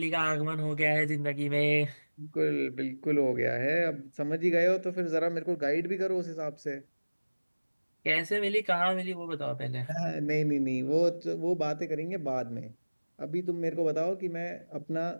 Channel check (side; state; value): both; inverted; correlation -1.00